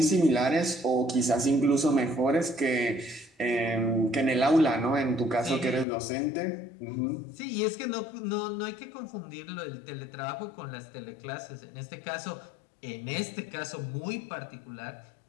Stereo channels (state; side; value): drops out; right; at 5.9 s